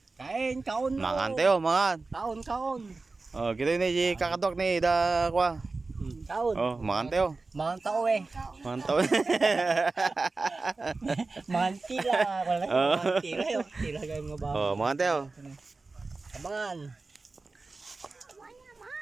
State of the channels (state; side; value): quieter; left; 3.7 dB